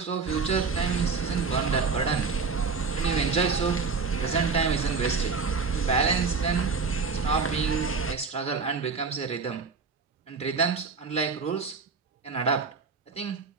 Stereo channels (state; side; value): quieter; left; 4.9 dB